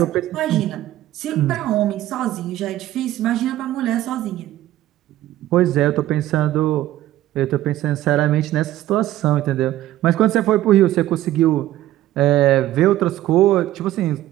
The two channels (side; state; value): left; quieter; 14.3 dB